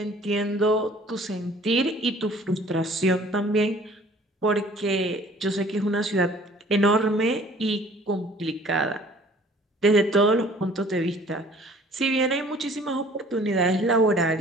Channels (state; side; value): normal; both; correlation 0.53